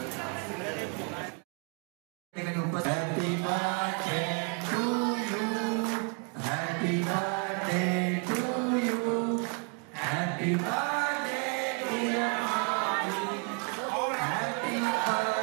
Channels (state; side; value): quieter; left; 36.3 dB